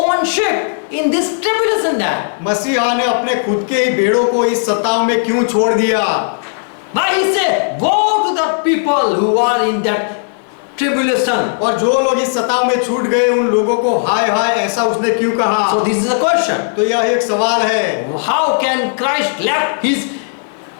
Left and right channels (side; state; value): right; silent; digital silence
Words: sheep in this tribulation there? मसीहा ने अपने खुद के ही भेड़ों को इस सताव में क्यों छोड़ दिया? Why he said, woe to the people who are in that tribulation? और जो लोग इस सताव में छूट गए उन लोगों को हाय हाय ऐसा उसने क्यों कहा? So this is a question. तो यह एक सवाल है, How can Christ left his